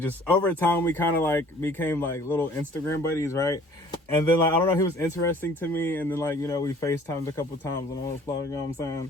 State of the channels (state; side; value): normal; both; correlation 0.53